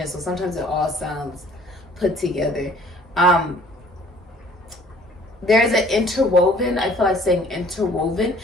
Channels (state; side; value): normal; both; correlation 0.55